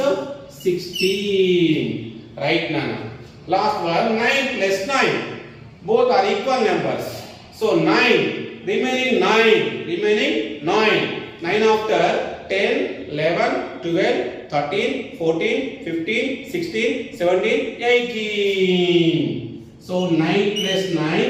16. Right, Nana. Last one, 9 plus 9. Both are equal numbers. So 9, remaining 9. 9 after 10, 11, 12, 13, 14, 15, 16, 17, 18. So 9 plus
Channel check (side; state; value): both; identical; correlation 1.00